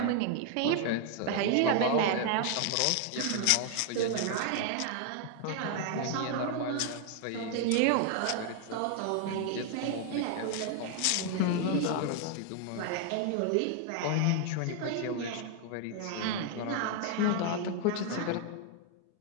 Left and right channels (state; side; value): different; both; correlation 0.00